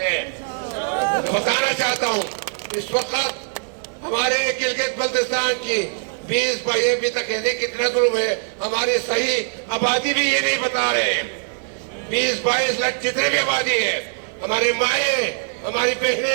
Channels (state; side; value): silent; left; 58 dB below the other